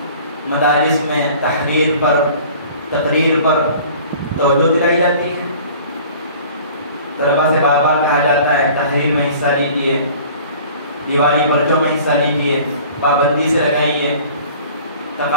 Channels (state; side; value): inverted; both; correlation -0.47